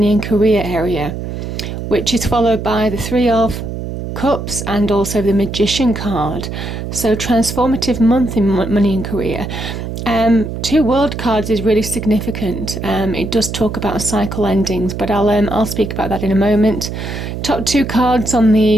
and career area, which is followed by the Three of Cups and also the Magician card. So transformative month in money and career. Two world cards is really significant. It does talk about cycle endings, but I'll speak about that in a moment. Top two cards on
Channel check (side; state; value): right; noise; hum, 6 dB below the sound